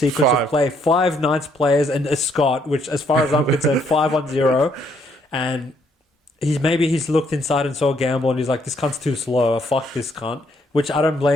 of play. 5 Knights players and a Scott, which, as far as I'm concerned, 5-on-0. And he's looked inside and saw a gamble, and he's like, this cunt's too slow. Fuck this cunt. Which I don't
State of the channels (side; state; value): both; normal; correlation 0.70